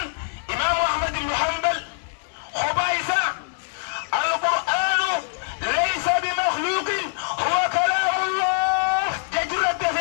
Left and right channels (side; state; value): right; silent; digital silence